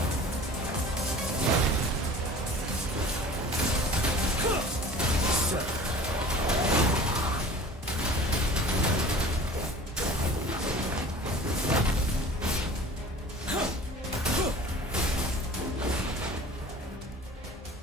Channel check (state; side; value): normal; both; correlation 0.43